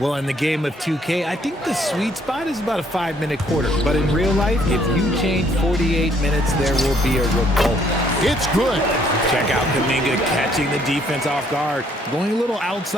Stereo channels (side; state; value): both; normal; correlation 0.65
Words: in the game of 2K, I think the sweet spot is about a 5-minute quarter. But in real life, if you change 48 minutes, there will be a revolt. It's good. Check out Kuminga catching the defense off guard, going a little